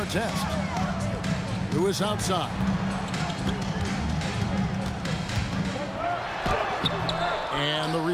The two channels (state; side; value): identical; both; correlation 1.00